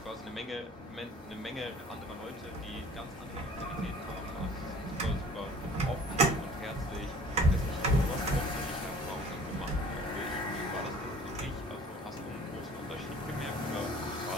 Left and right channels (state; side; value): normal; both; correlation 0.49